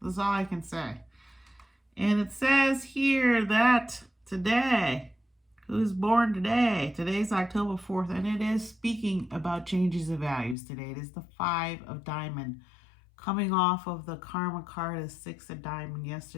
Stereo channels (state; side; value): drops out; right; at 10.6 s